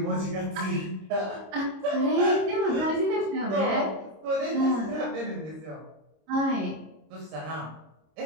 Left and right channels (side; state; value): left; late; 26 ms